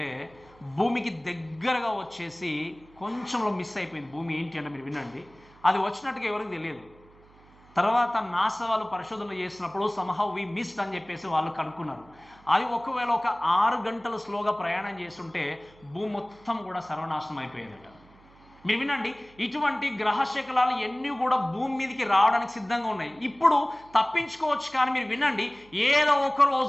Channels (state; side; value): noise; right; hum, 26 dB below the sound